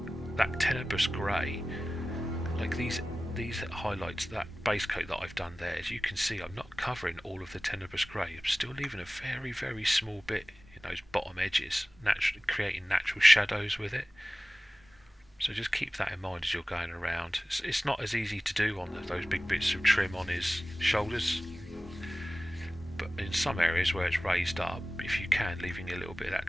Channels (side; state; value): both; normal; correlation 0.97